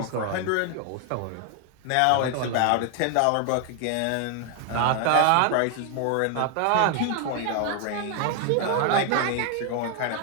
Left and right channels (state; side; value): different; both; correlation 0.00